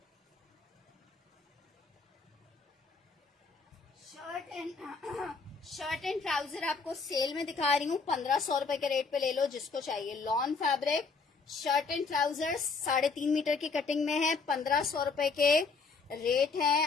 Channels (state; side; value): quieter; right; 4.6 dB